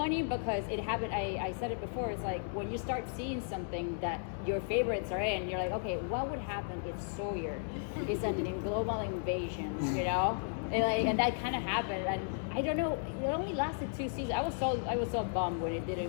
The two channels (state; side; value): silent; right; digital silence